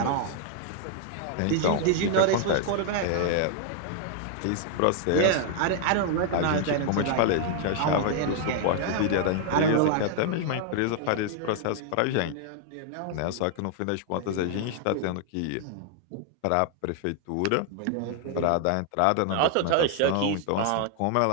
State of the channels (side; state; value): both; different; correlation 0.00